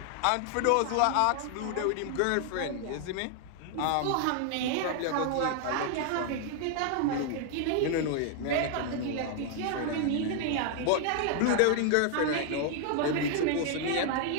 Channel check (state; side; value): different; both; correlation 0.00